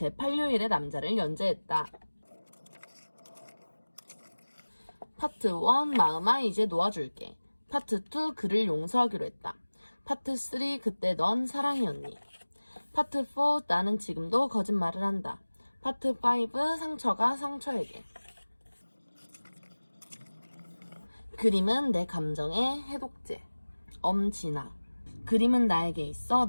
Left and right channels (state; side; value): inverted; both; correlation -1.00